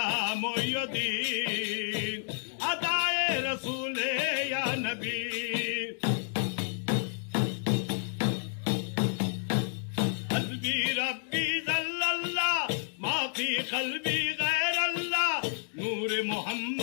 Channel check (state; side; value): silent; right; digital silence